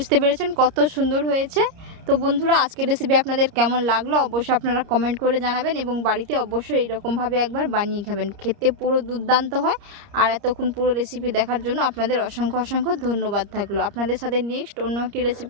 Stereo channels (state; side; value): late; left; 30 ms